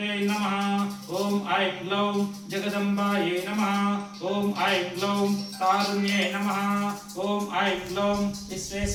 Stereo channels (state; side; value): identical; both; correlation 1.00